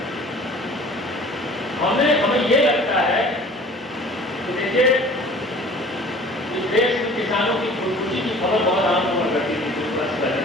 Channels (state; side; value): normal; both; correlation 0.47